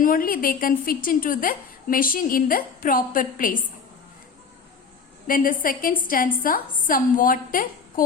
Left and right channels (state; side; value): quieter; right; 5.6 dB